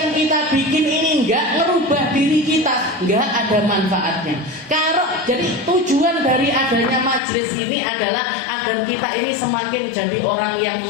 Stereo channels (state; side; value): drops out; right; at 7.2 s